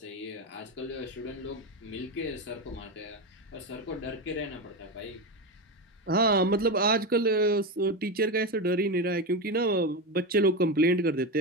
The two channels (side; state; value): both; normal; correlation 0.15